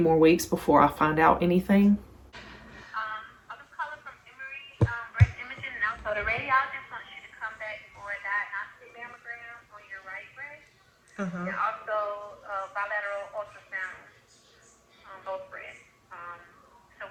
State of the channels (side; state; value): both; identical; correlation 1.00